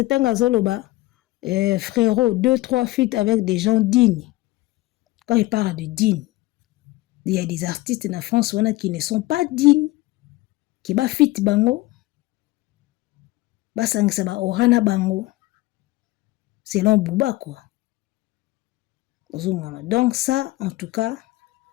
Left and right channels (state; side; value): quieter; right; 19.1 dB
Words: tanga zoloba frérot 2-3 feats avec des gens dignes. Quand il parle de dignes, il y a des artistes na France qui ne sont pas dignes. Qui ba fit bango ba sangisa ba orana bango selon Booba quoi. Donc ça en tout cas